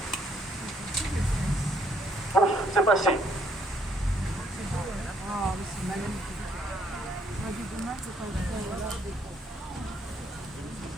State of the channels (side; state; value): both; normal; correlation 0.69